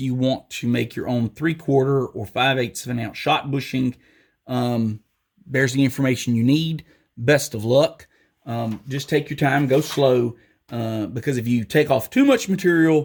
want to make your own 3/4 or 5/8 of an ounce shot bushing, there's the information you need. Best of luck. Just take your time, go slow, because if you take off too much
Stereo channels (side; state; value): both; identical; correlation 1.00